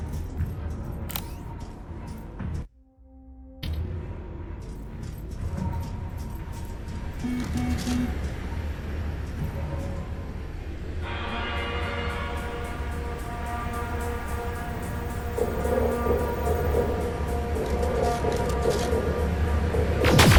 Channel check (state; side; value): identical; both; correlation 1.00